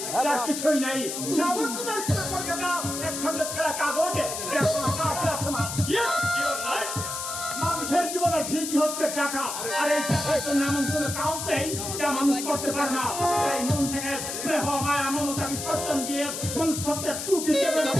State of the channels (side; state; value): left; noise; hiss, 5 dB below the sound